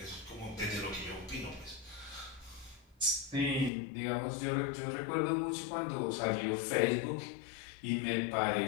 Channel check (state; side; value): drops out; right; at 3.7 s